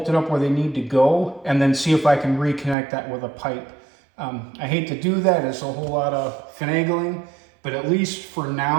up where they need to go, and then see if I can reconnect that with a pipe. I hate to do that. It's a whole lot of finagling, but at least for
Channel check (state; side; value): drops out; left; at 2.8 s